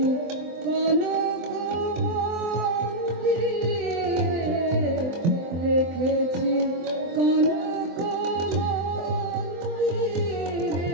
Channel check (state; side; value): late; left; 23 ms